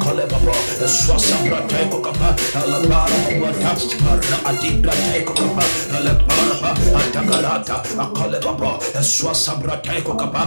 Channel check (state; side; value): inverted; both; correlation -1.00